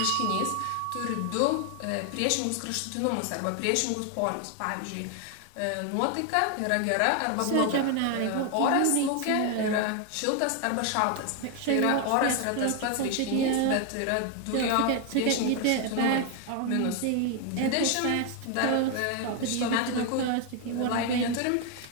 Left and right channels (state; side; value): different; both; correlation 0.01